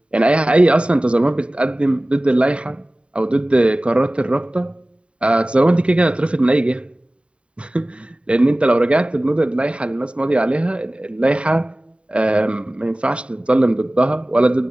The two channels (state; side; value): late; left; 0.058 ms